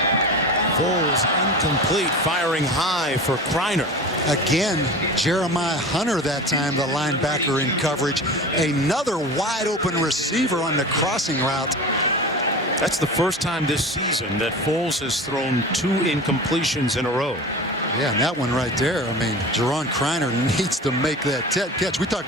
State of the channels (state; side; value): normal; both; correlation 0.33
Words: Foles incomplete, firing high for Kreiner. Again, Jeremiah Hunter that time, the linebacker in coverage. Another wide open receiver on the crossing route. That's the first time this season that Foles has thrown 2 incompletions in a row. Yeah, and that one right there, I mean, Jerron Kreiner needs to make that catch. We talk